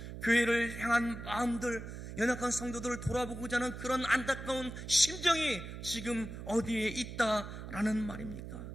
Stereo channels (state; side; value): noise; right; hum, 9 dB below the sound